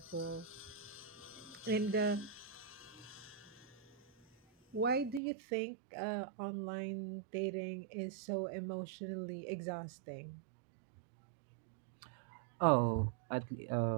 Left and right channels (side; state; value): left; drops out; at 5.2 s